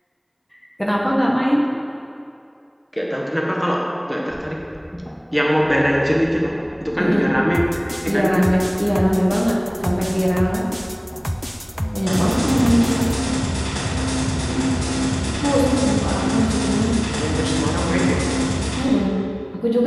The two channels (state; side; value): identical; both; correlation 1.00